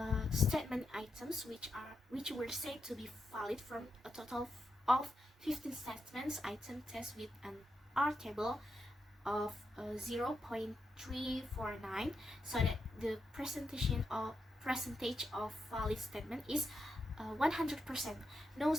statement items which were said to be valid from a total of 15 statements item test with an R table of 0.349, so that the percentage of valid statement is 100%. No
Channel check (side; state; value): both; normal; correlation 0.85